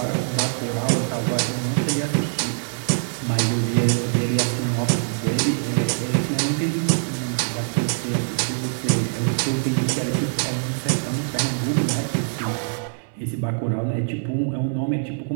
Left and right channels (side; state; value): left; silent; 63 dB below the other